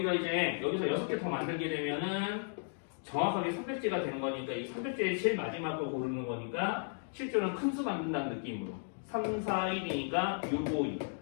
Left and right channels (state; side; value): silent; right; digital silence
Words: 이제 여기서 6개 더 만들게 되면은 정확하게 300제가 되는 거니까 이 300제의 제일 마지막 걸 고르는 거니까 실제로는 큰 수 만든다는 느낌으로 3, 4, 1이니까 6, 5, 2.